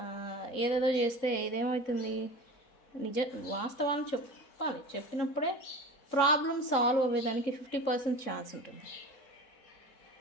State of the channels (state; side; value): late; right; 3.7 ms